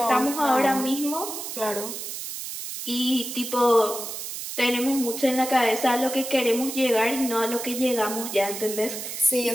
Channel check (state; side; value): noise; right; hiss, 7 dB below the sound